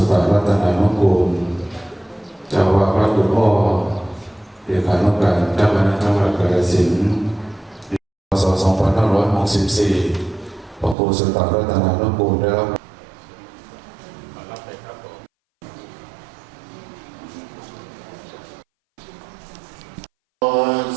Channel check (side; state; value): left; drops out; at 11.0 s